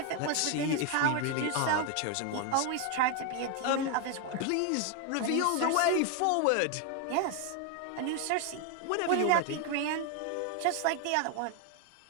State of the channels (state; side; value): different; both; correlation 0.01